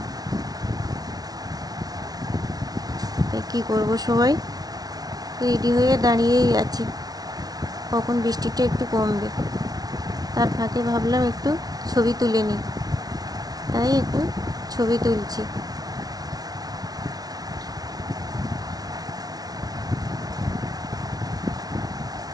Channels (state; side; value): late; left; 0.19 ms